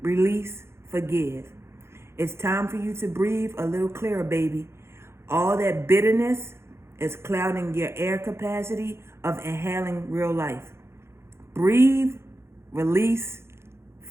release, forgive. It's time for you to breathe a little clearer, baby. All that bitterness is clouding your air capacity of inhaling real life. Breathe, release,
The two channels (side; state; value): left; late; 0.12 ms